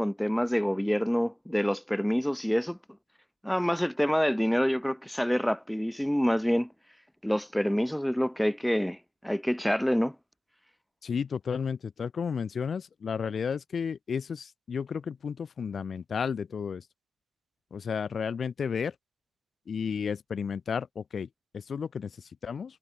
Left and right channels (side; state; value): both; normal; correlation 0.97